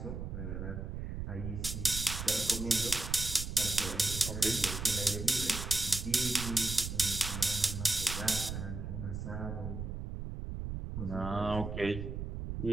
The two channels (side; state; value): right; noise; rumble, 5 dB below the sound